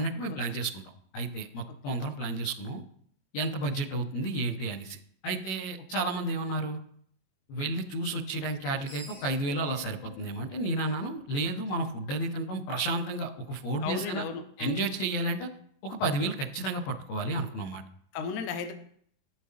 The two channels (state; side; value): late; right; 21 ms